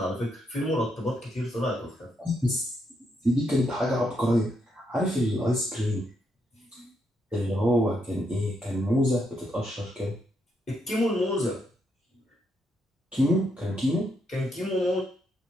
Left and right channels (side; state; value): both; normal; correlation 0.78